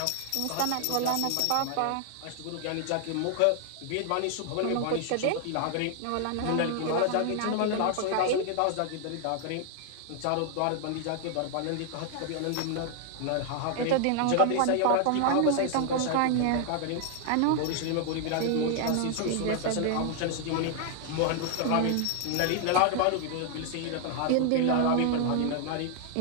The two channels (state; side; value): different; both; correlation 0.00